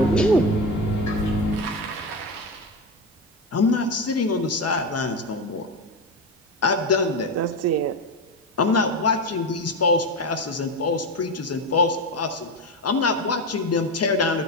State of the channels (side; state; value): both; normal; correlation 0.17